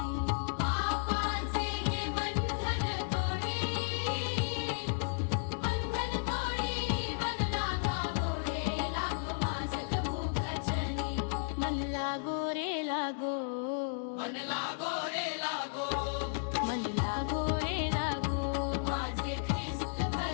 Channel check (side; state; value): right; silent; digital silence